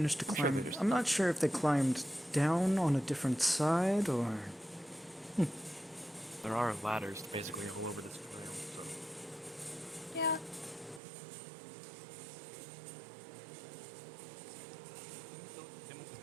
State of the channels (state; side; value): drops out; left; at 11.0 s